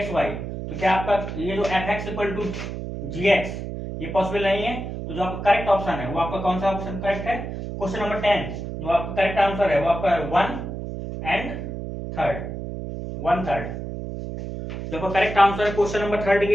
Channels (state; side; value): noise; right; hum, 6 dB below the sound